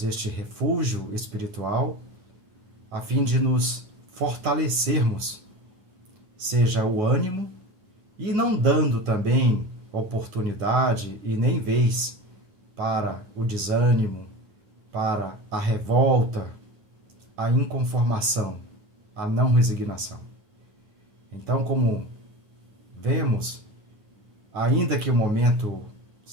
este refúgio espiritual a fim de nos fortalecermos, seja o ânimo, e não dando também oportunidade e nem vez para o desânimo, para a revolta, a inconformação, a não resignação. Então, como vemos, ainda que o momento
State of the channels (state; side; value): late; left; 9.5 ms